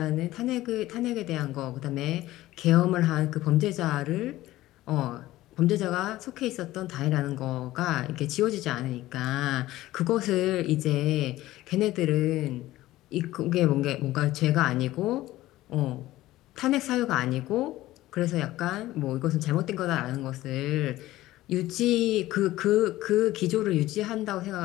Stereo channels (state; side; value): quieter; right; 16.2 dB